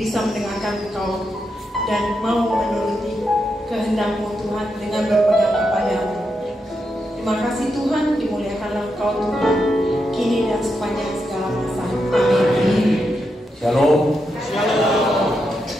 mendengarkan Engkau dan mau menuruti kehendak-Mu Tuhan dengan berpegang kepada-Mu. Terima kasih Tuhan, dimuliakanlah Engkau Tuhan, kini dan sepanjang segala masa. Amin. Shalom.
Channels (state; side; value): normal; both; correlation 0.84